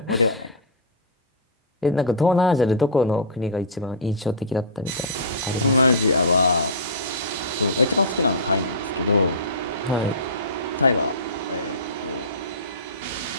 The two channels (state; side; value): normal; both; correlation -0.18